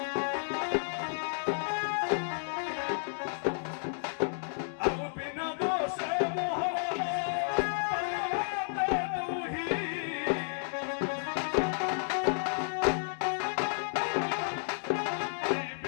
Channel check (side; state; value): right; silent; digital silence